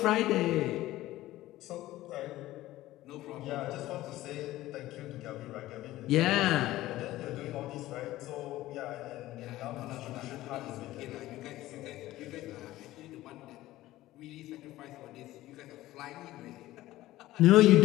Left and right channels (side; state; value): right; quieter; 16.1 dB